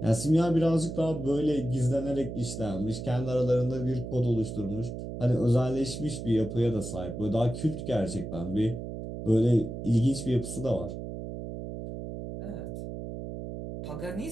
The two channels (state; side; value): noise; right; hum, 8 dB below the sound